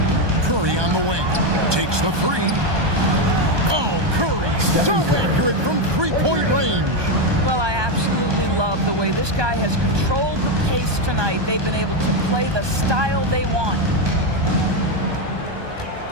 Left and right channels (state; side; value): late; left; 1.2 ms